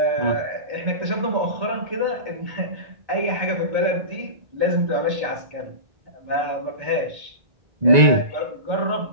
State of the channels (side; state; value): left; late; 1.9 ms